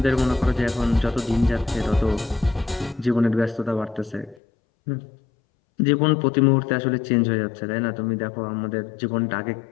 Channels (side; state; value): right; drops out; at 4.4 s